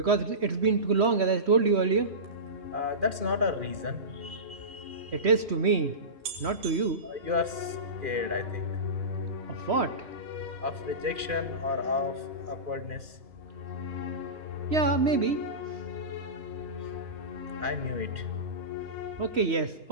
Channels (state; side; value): late; left; 3.1 ms